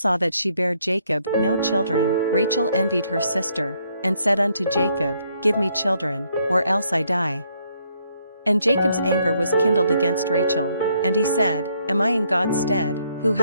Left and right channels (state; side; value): inverted; both; correlation -0.71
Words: that she bare Jacob no children, Rachel envied her sister, and said unto Jacob, Give me children, or else I die. And Jacob's anger was kindled against Rachel, and he said, Am I in God's stead, who